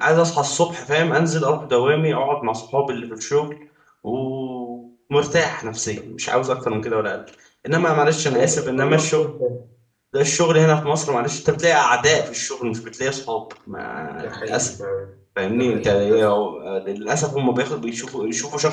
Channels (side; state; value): both; identical; correlation 1.00